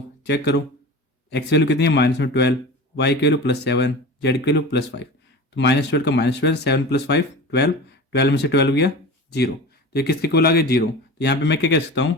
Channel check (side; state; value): both; normal; correlation 0.33